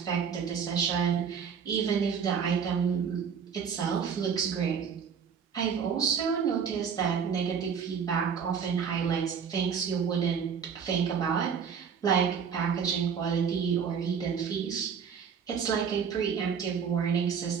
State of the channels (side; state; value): left; quieter; 6.9 dB